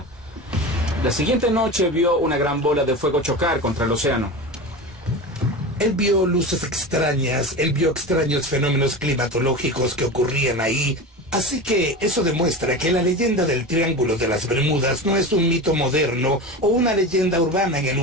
La siguiente noche vio una gran bola de fuego chocar contra el océano. Él vio luces extrañas, él vio extraños fenómenos climatológicos que ocurrían ahí. Así que eso demuestra que la leyenda del Triángulo de las Bermudas no es un mito moderno o una leyenda urbana en el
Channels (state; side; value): normal; both; correlation 0.27